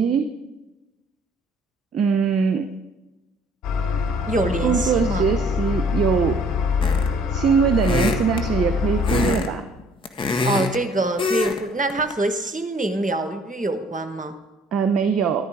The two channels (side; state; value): both; normal; correlation 0.58